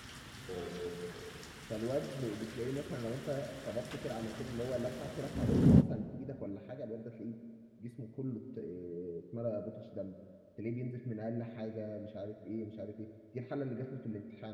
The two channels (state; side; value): identical; both; correlation 1.00